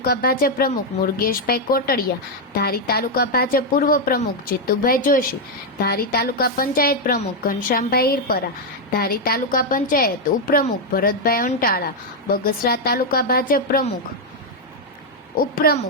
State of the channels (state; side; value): normal; both; correlation 0.01